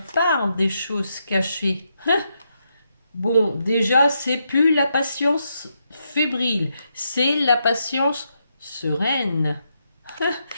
part des choses cachées. Bon, déjà, c'est plus la patience fébrile, c'est la patience sereine.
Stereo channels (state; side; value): inverted; both; correlation -0.81